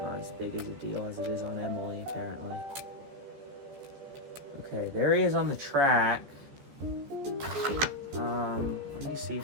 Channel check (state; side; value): late; left; 14 ms